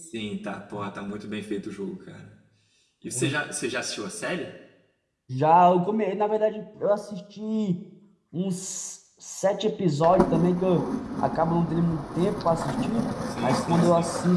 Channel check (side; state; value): both; identical; correlation 1.00